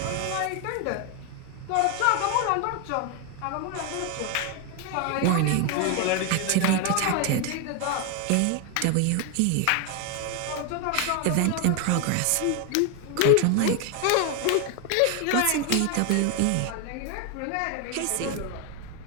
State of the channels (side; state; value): both; different; correlation 0.01